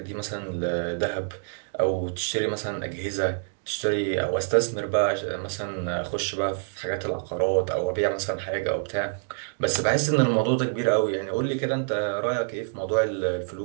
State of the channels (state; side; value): silent; left; digital silence